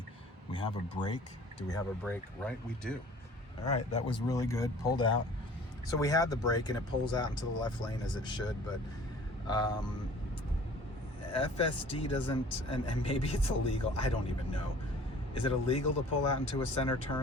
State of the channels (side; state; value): both; normal; correlation 0.49